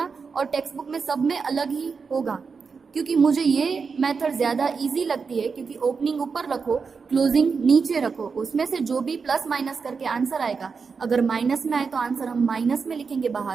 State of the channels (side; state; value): left; quieter; 5.3 dB